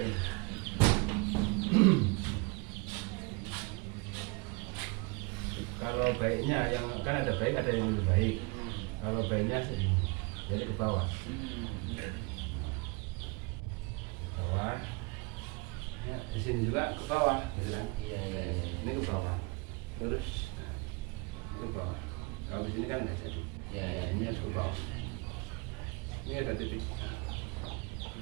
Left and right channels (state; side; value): quieter; left; 28.5 dB